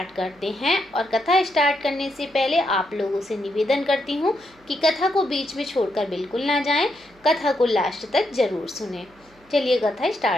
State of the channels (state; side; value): noise; right; hum, 29 dB below the sound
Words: करते हैं। और कथा स्टार्ट करने से पहले आप लोगों से निवेदन करती हूँ कि कथा को बीच में छोड़कर बिल्कुल ना जाएं, कथा को लास्ट तक जरूर सुनें। चलिए कथा